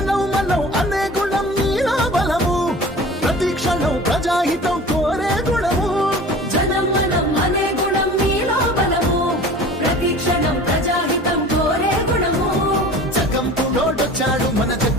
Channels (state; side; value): normal; both; correlation 0.41